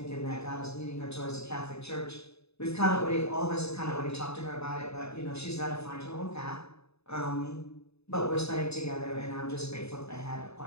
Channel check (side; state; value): right; late; 0.79 ms